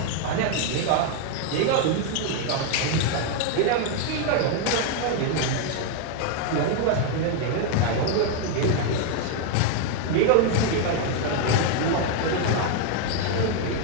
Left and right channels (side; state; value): both; different; correlation 0.01